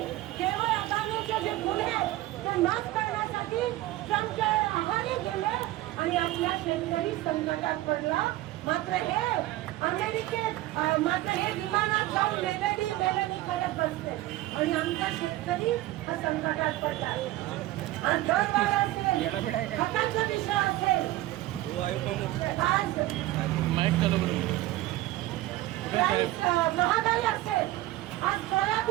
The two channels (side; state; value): left; quieter; 16.5 dB